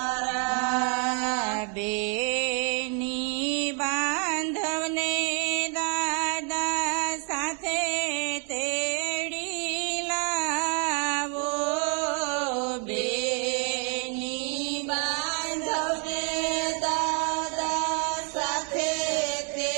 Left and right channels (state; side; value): quieter; left; 39.3 dB